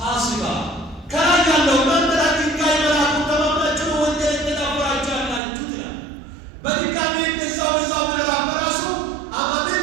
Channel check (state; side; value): drops out; left; at 5.4 s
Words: ከላይ ያለው እናንተ ላይ ድንጋይ መላኩን ተማምናችሁ ወንጀል የተዳፈራችሁ ያላችሁት